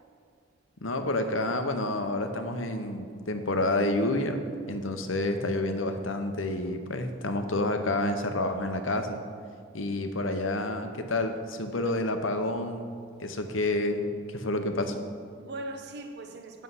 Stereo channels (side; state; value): both; normal; correlation 0.11